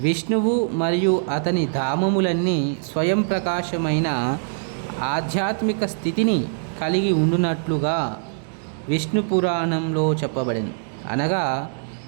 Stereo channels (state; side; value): silent; left; digital silence